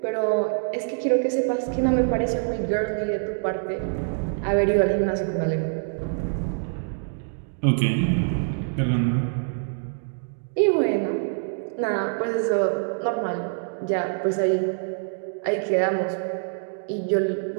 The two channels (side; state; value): left; silent; digital silence